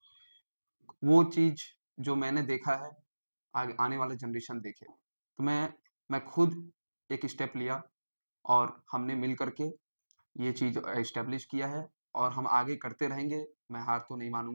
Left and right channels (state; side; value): inverted; both; correlation -1.00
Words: वो चीज़ जो मैंने देखा है, आगे आने वाला जनरेशन देखे। तो मैं खुद एक स्टेप लिया और हमने मिल कर के ये चीज़ एस्टेब्लिश किया है और हम आगे करते रहेंगे। मैं हार तो नहीं